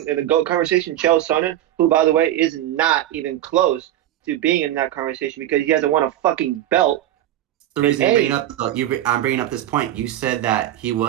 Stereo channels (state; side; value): quieter; left; 12.9 dB